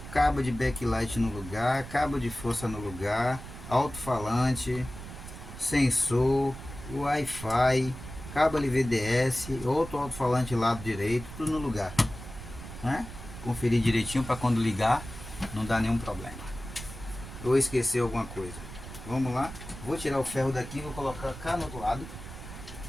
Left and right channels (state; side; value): noise; right; rumble, 12 dB below the sound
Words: cabo de backlight no lugar, cabo de força no lugar, alto-falante, sensor, Wi-Fi, cabo LVDS, outro alto-falante lado direito, tudo no lugar, né? Conferir direitinho para quando ligar não dá nenhum problema. Ou esquecer alguma coisa. Vamos lá, vou tirar o ferro daqui, vou colocar cá no outro lado